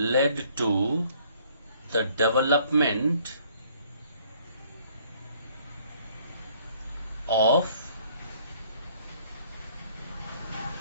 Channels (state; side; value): inverted; both; correlation -0.61